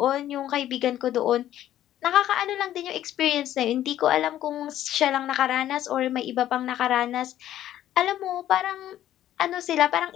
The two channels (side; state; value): right; quieter; 12.4 dB